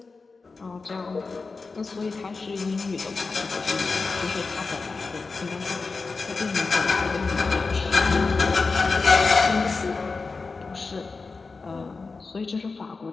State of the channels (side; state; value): right; quieter; 4.2 dB